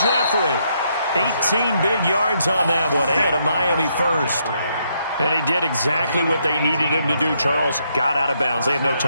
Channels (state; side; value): inverted; both; correlation -0.75